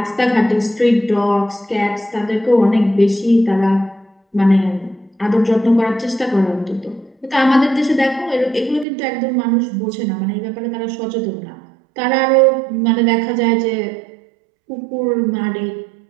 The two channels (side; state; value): left; drops out; at 8.8 s